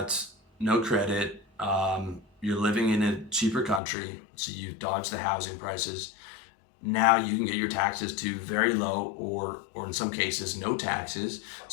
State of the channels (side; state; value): right; drops out; at 3.8 s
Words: no credit. You're living in a cheaper country, so you've dodged the housing prices. Now you can get your taxes to very low or in some cases no taxes.